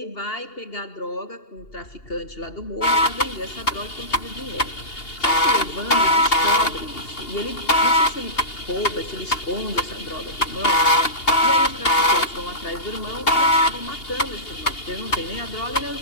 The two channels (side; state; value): right; late; 2.8 ms